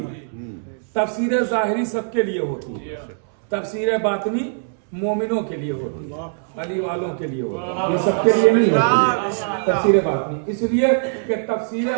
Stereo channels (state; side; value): silent; left; 65 dB below the other